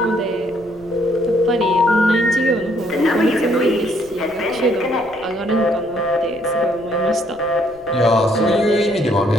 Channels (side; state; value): left; noise; rumble, 25 dB below the sound